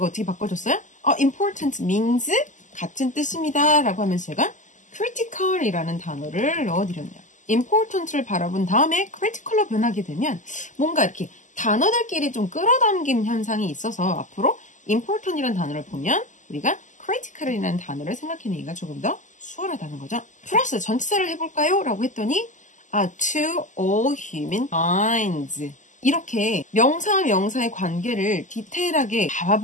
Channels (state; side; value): late; right; 0.37 ms